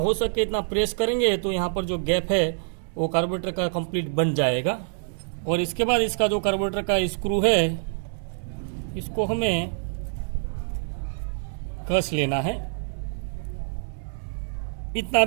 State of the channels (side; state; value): left; silent; digital silence